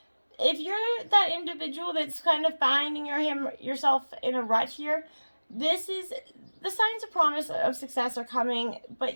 If you're that individual that's kind of finding yourself in a rut here, this is the signs of promise of success are coming, but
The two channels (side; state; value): both; inverted; correlation -1.00